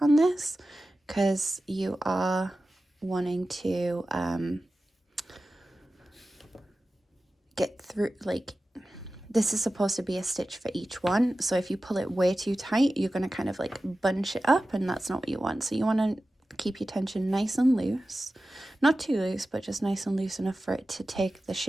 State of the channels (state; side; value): normal; both; correlation 0.94